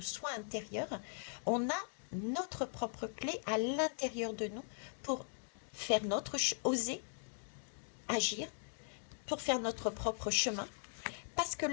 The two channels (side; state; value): right; silent; digital silence